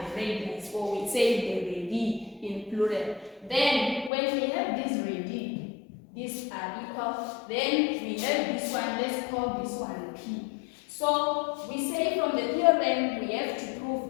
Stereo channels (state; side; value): drops out; right; at 4.1 s